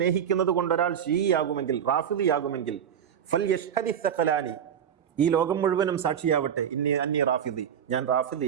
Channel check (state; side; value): quieter; left; 8.6 dB